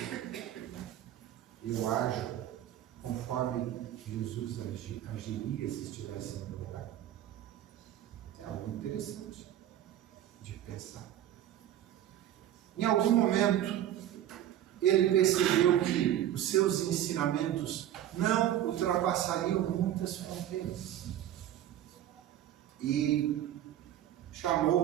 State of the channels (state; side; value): quieter; left; 11.8 dB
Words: eu ajo conforme Jesus agiria se estivesse no meu lugar? É algo interessante de pensar. Em algum momento, ele percebeu que os seus ensinamentos não ultrapassariam muitas fronteiras. E